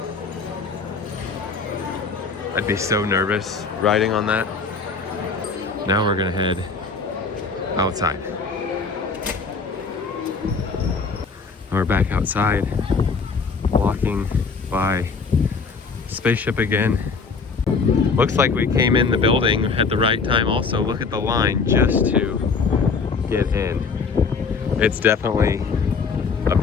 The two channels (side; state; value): right; quieter; 4.9 dB